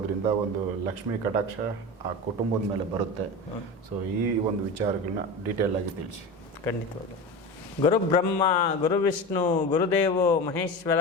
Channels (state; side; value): normal; both; correlation 0.27